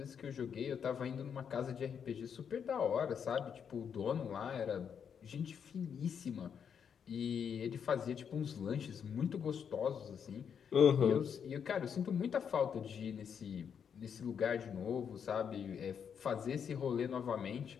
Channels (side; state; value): right; quieter; 7.4 dB